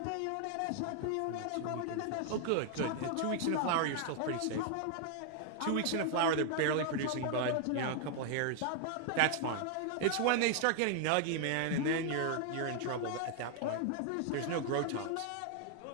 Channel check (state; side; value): different; both; correlation 0.00